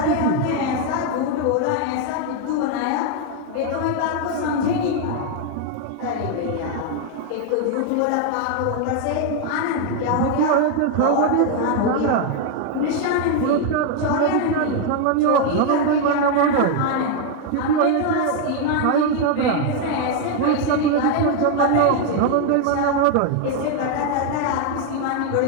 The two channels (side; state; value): both; different; correlation 0.01